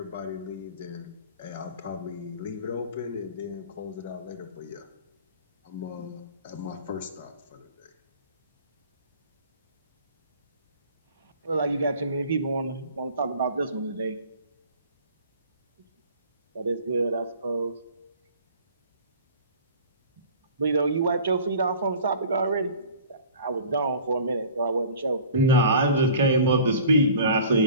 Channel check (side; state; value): both; inverted; correlation -0.44